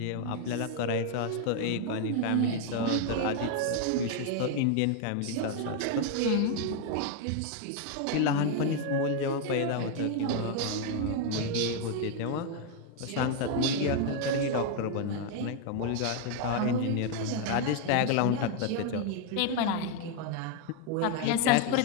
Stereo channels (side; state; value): both; different; correlation 0.01